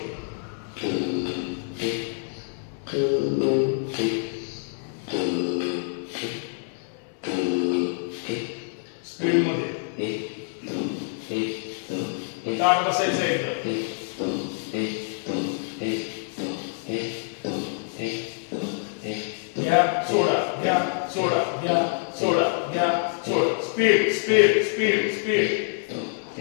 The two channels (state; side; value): silent; right; 61 dB below the other